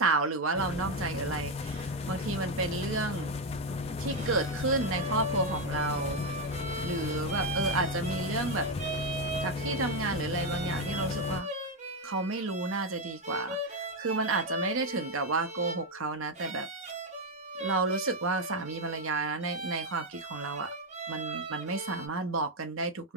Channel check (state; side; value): normal; both; correlation 0.06